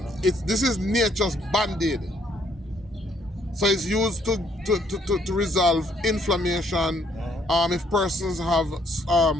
This is nature's band-aid. So it's used to resolve inflammation. If persons have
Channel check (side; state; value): both; normal; correlation 0.68